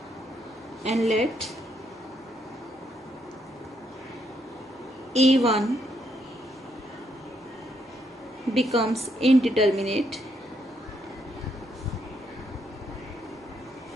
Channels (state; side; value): normal; both; correlation 0.75